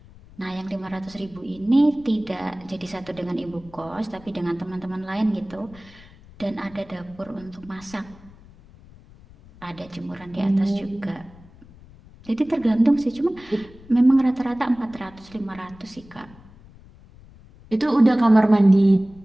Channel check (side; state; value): left; noise; rumble, 23 dB below the sound